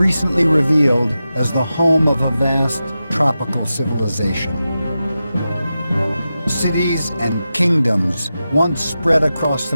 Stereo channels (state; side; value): inverted; both; correlation -0.92